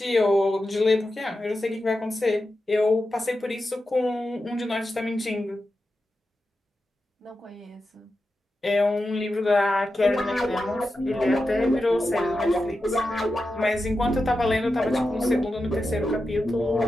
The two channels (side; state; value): both; normal; correlation 0.90